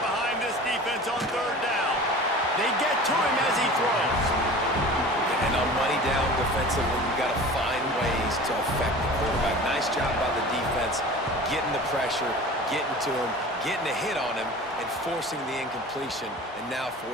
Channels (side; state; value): both; normal; correlation 0.39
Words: this defense on 3rd down. They get to him as he throws. And on money down defensively, you got to find ways to affect the quarterback. Nice job by the defense, getting the pressure, getting to him, getting a hit on him, and forcing the incompletion, and now